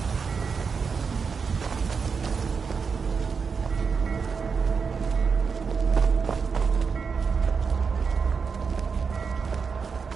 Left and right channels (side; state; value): left; quieter; 5.6 dB